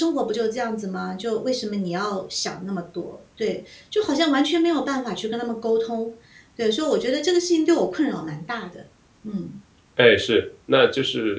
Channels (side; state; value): both; identical; correlation 1.00